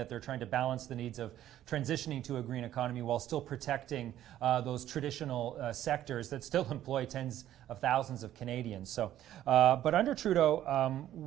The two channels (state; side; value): quieter; left; 12.4 dB